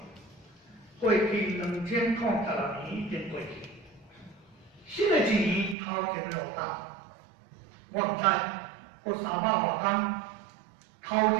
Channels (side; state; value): left; drops out; at 5.8 s